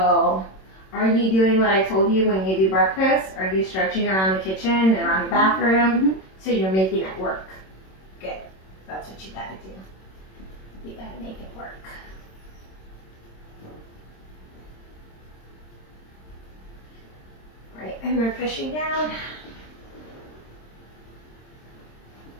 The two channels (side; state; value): right; late; 26 ms